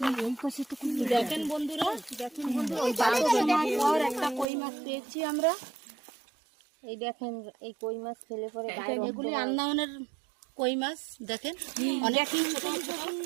দেখেন বন্ধুরা, একটা কই মাছ পেয়েছি আমরা। এই দেখেন, এই কই মাছ খেলে পরে এগুলি আন্দামানের কই মাছ। দেখেন অনেক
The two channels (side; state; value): left; drops out; at 4.5 s